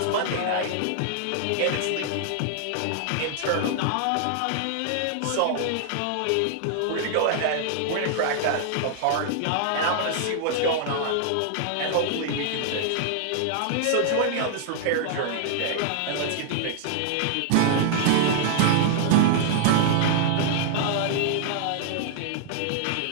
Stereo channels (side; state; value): both; different; correlation -0.01